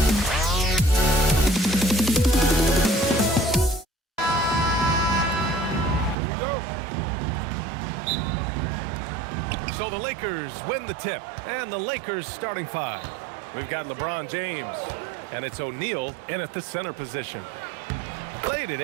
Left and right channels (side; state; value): left; drops out; at 6.2 s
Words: So the Lakers win the tip, and the Lakers starting five. We've got LeBron James, and it's O'Neal in at the center position. Played it